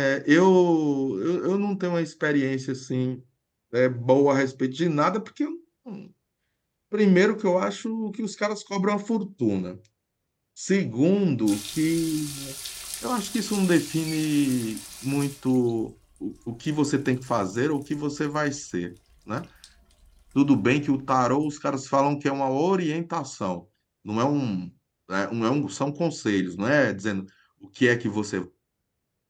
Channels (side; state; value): both; identical; correlation 1.00